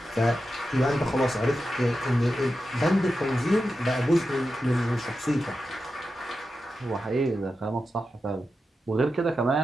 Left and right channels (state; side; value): normal; both; correlation 0.90